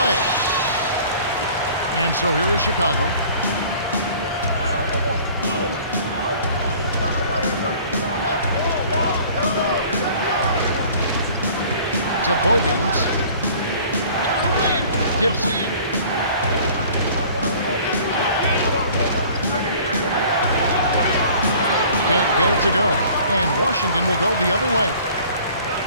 And so here is Chicago. To Bogans. Gibson. Can't get it to go. And Washington will go the other way.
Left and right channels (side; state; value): both; inverted; correlation -0.50